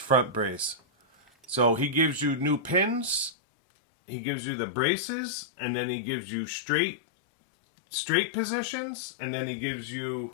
brace. So he gives you new pins, he gives you the braces, and then he gives you straight positions, and then he gives you,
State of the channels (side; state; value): right; drops out; at 3.4 s